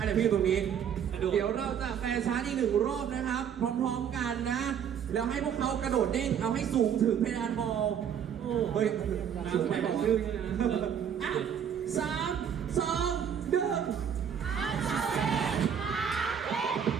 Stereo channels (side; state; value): left; quieter; 8.3 dB